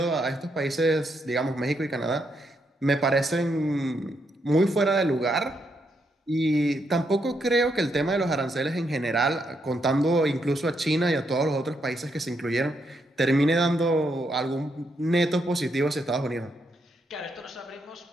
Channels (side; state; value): both; normal; correlation 0.78